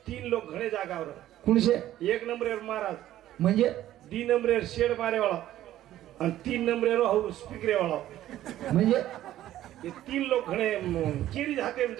3 लोक घणे जागावर कुणशे एक नंबरेर महाराज म्हणजे 2 नंबरेर शेड मारे वाला आणि 3 नंबरेर हो स्पीकरे वाला म्हणजे ये 3 लोक घणे किरी हातेम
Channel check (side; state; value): left; quieter; 13.3 dB